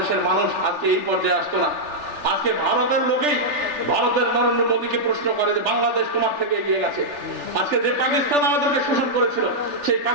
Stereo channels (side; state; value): left; late; 3.4 ms